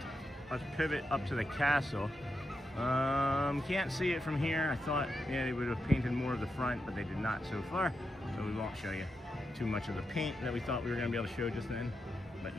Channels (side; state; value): both; normal; correlation 0.86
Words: up to the castle. Can't see it from here. I thought, they would have painted more of the front, but they did not so far. So we won't show you too much of the paint that we thought we were going to be able to show just then. But